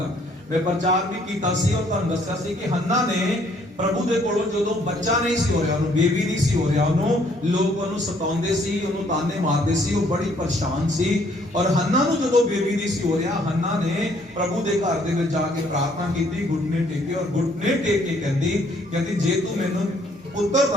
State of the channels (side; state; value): both; normal; correlation 0.64